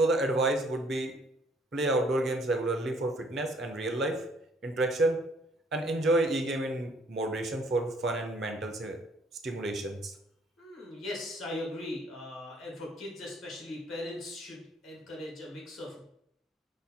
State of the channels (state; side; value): normal; both; correlation 0.62